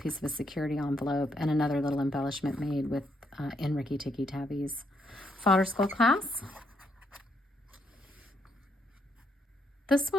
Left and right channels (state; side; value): normal; both; correlation 0.75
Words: of a security envelope and another little embellishment made with in Ricky Tikki Tavi's Fodder School class. This